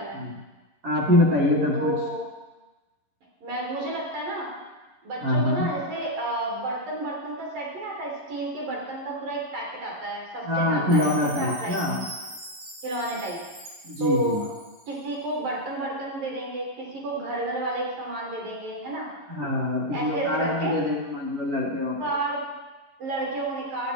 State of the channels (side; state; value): left; late; 11 ms